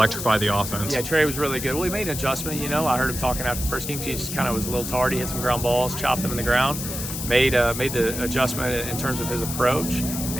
the offense. Yeah, Trey was really good. Well, he made an adjustment. I heard him talking after the first game. He just kind of was a little tardy, hit some ground balls, chopped them in the ground. Made the adjustment in terms of his approach,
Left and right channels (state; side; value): noise; left; hiss, 6 dB below the sound